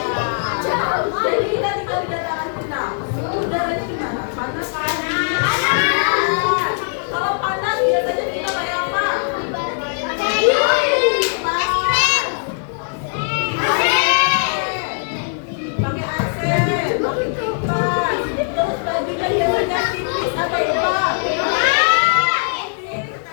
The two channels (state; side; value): silent; right; digital silence